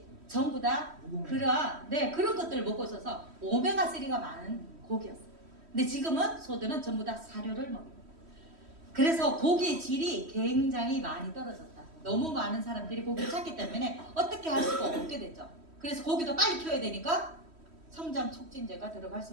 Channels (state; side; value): late; left; 3.1 ms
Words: 전부 다 그런 것들을 먹고 있어서 오메가3가 많은 고기였어요. 근데 지금은 소들은 전부 다 사료를 먹어요. 그래서 고기의 질이 굉장히 많이 떨어졌다. 너무 많은 사람들이 고기를 찾기 때문에 어떻게 할 수가 없게 됐죠. 그래서 고기도 빨리 키워야 되니까 성장 촉진제가 들어갈